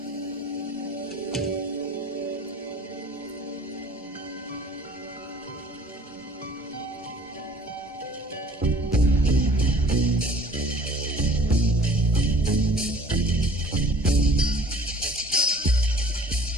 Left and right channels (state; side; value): normal; both; correlation 0.51